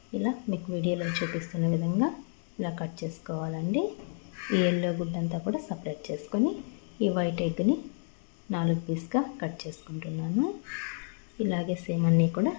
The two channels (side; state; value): right; silent; 56 dB below the other